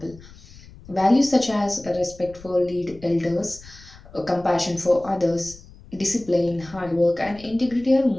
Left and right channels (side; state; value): left; noise; rumble, 21 dB below the sound